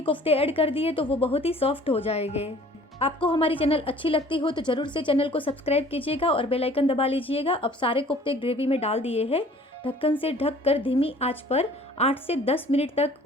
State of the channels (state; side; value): normal; both; correlation 0.51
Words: कोफ्ते ऐड कर दिए तो वो बहुत ही सॉफ्ट हो जाएंगे। आपको हमारी चैनल अच्छी लगती हो तो जरूर से चैनल को सब्सक्राइब कीजिएगा और बेल आइकन दबा लीजिएगा। अब सारे कोफ्ते ग्रेवी में डाल दिए हैं। ढक्कन से ढक कर धीमी आंच पर 8 से 10 मिनट तक